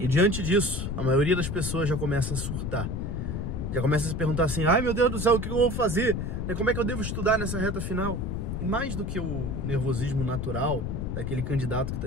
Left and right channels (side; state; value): left; noise; rumble, 3 dB below the sound